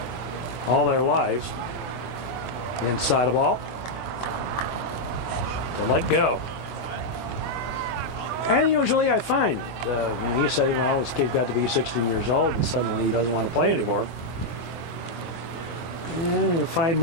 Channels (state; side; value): late; right; 24 ms